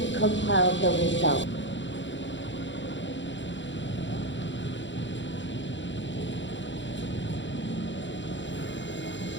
compile the results.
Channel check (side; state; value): right; late; 0.54 ms